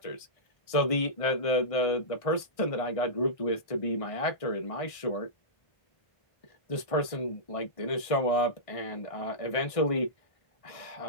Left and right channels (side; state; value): right; late; 1.6 ms